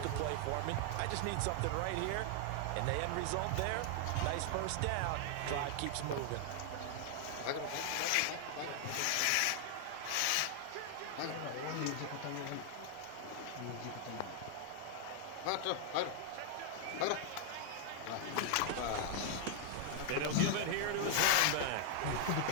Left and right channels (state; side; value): different; both; correlation 0.00